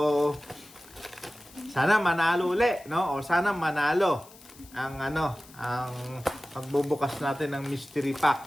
sana manalo uli, no? O sana manalo ang pagbubukas natin ng mystery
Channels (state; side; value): noise; left; hiss, 22 dB below the sound